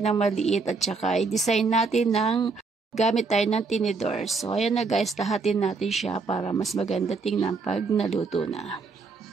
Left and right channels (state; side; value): quieter; left; 4.3 dB